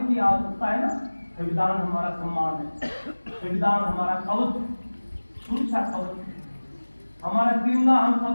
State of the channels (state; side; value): inverted; both; correlation -1.00